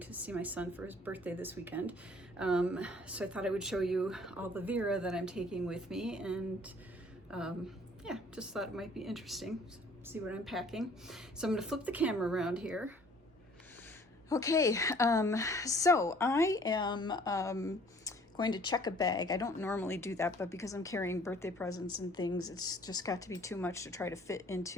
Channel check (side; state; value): both; normal; correlation 0.55